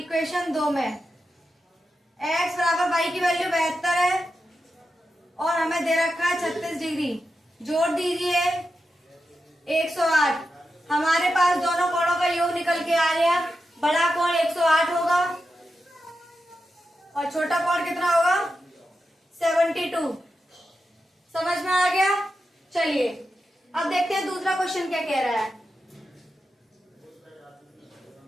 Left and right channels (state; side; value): normal; both; correlation 0.89